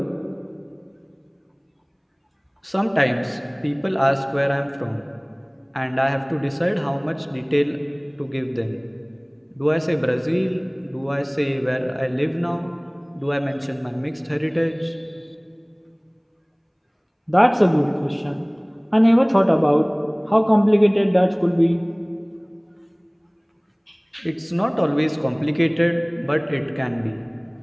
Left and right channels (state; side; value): identical; both; correlation 1.00